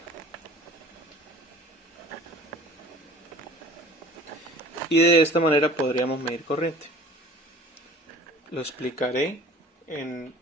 Y de esta manera podríamos medir corriente. Lo explicaré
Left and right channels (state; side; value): normal; both; correlation 0.46